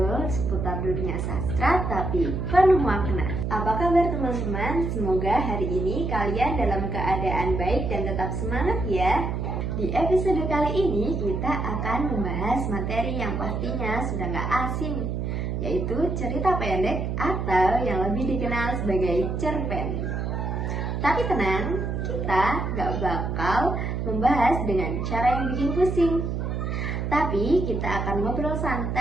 seputar dunia sastra tapi penuh makna. Apa kabar teman-teman? Semoga hari ini kalian dalam keadaan baik dan tetap semangat ya. Di episode kali ini kita akan membahas materi yang pastinya sudah gak asing, yaitu cerita pendek atau yang lebih dikenal sebagai cerpen. Tapi tenang, kita gak bakal membahas dengan cara yang bikin pusing. Tapi kita akan ngobrol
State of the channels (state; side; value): noise; right; hum, 2 dB below the sound